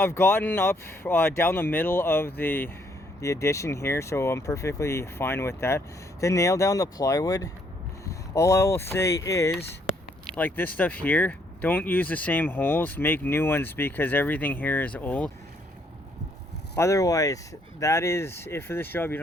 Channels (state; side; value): normal; both; correlation 0.69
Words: gotten up down the middle of the addition here, so I'm perfectly fine with that. To nail down the plywood, all I will say is, like this stuff here, don't use the same holes, make new ones because everything here is old. Otherwise, that is it for this job. You